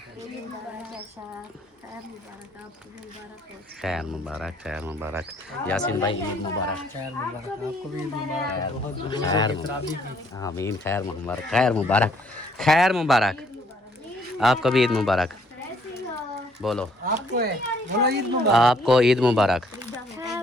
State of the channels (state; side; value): normal; both; correlation 0.65